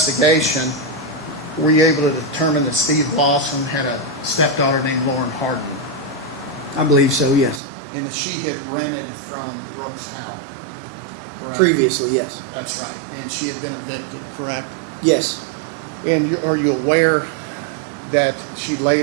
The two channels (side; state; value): left; drops out; at 7.6 s